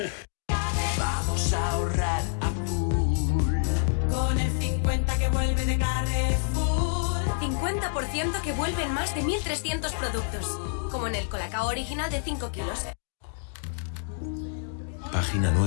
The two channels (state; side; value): silent; right; digital silence